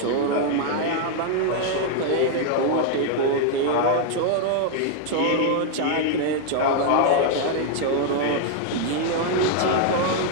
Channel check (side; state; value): both; different; correlation 0.00